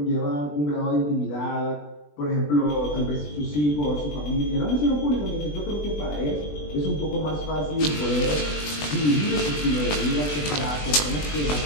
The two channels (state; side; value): late; right; 20 ms